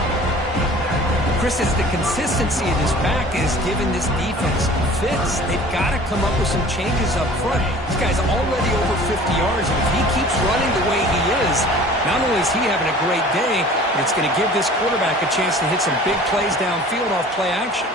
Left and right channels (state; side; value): normal; both; correlation 0.46